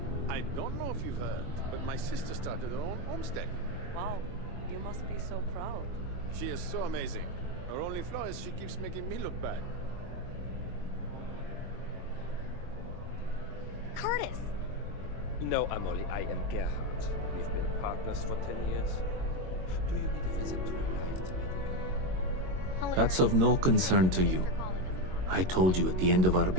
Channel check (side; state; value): left; late; 22 ms